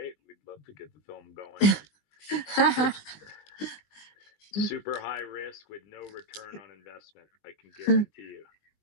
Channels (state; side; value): late; right; 20 ms